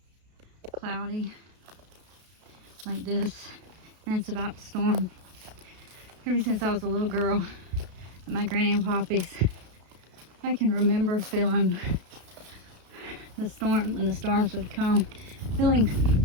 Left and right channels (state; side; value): late; left; 33 ms